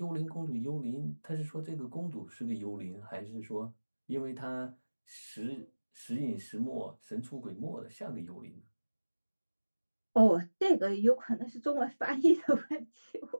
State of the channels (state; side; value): inverted; both; correlation -1.00